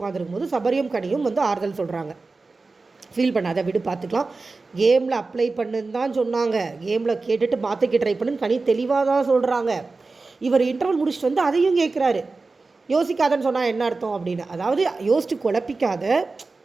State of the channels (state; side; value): quieter; left; 3.8 dB